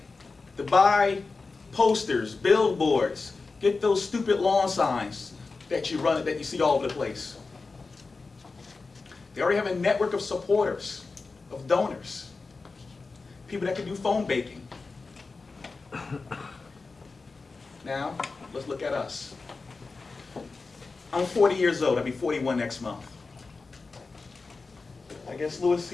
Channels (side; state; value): right; quieter; 4.0 dB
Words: to buy posters, billboards, get those stupid lawn signs that you see all over the place. They already have a network of supporters, of donors, people that can do phone baking. Now, let's look at us. I'm 40 years old. I'll be 41 next month. I guess Lewis